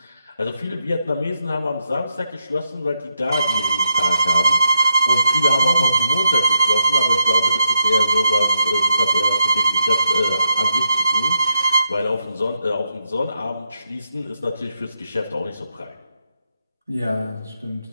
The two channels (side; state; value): both; inverted; correlation -0.84